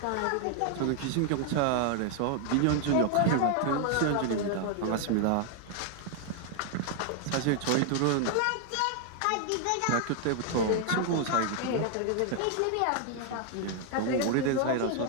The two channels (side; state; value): both; different; correlation 0.00